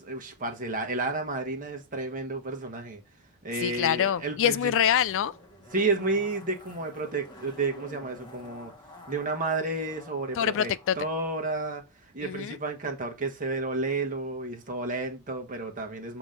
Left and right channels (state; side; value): normal; both; correlation -0.16